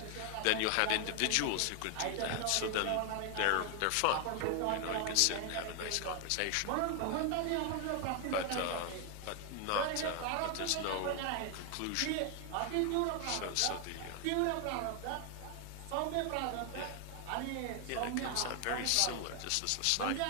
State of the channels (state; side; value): different; both; correlation 0.00